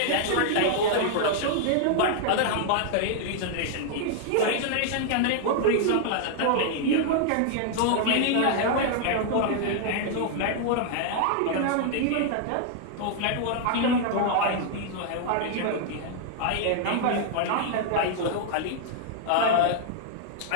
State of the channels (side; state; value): both; different; correlation -0.01